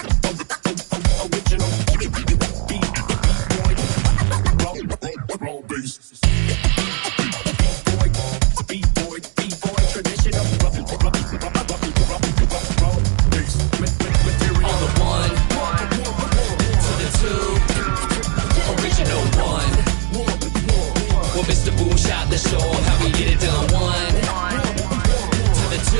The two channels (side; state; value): left; quieter; 39.6 dB